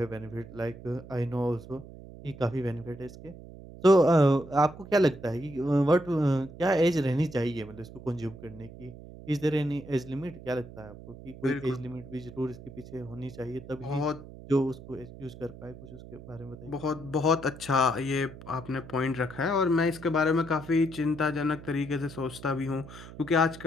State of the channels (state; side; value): noise; right; hum, 16 dB below the sound